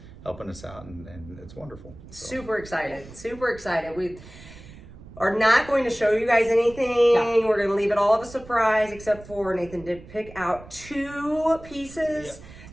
helping us out, and it's wonderful. So. Super excited. We are not going to show you guys anything. No. We're going to leave it all of a surprise, except for Nathan did pick out 2 pieces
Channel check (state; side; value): noise; right; rumble, 18 dB below the sound